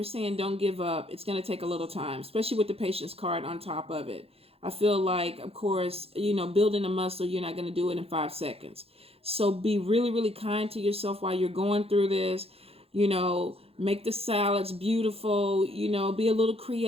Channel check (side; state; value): left; late; 0.28 ms